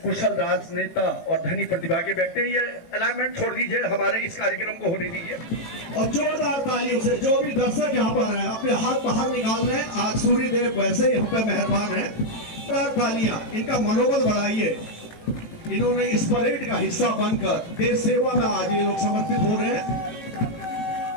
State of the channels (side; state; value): right; late; 18 ms